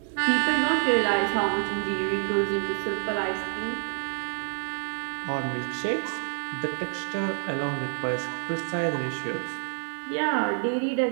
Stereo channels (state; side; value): silent; left; digital silence